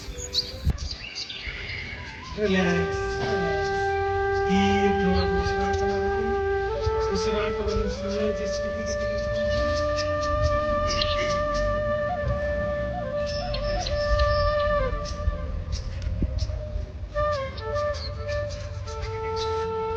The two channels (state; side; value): identical; both; correlation 1.00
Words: ರಿಲ್ಯಾಕ್ಸ್. ಉಸಿರಾಟವನ್ನು ಸಂಯೋಜಿಸಿ